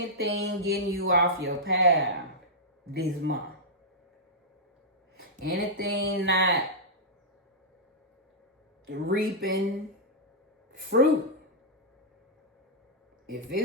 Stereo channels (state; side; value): normal; both; correlation -0.09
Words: getting you off your path this month. Anything not reaping fruit. If